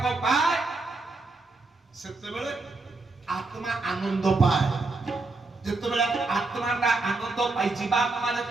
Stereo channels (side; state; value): left; quieter; 3.4 dB